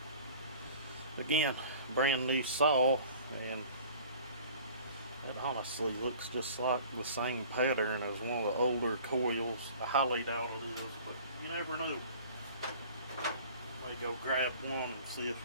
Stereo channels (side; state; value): both; inverted; correlation -0.46